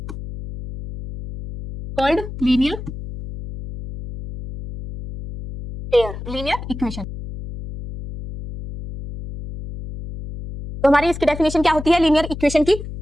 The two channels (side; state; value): left; noise; hum, 10 dB below the sound